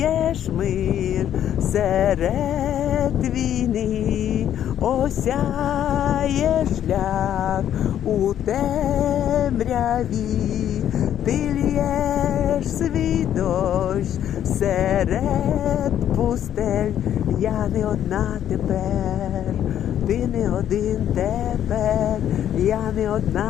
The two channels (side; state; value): right; quieter; 10.5 dB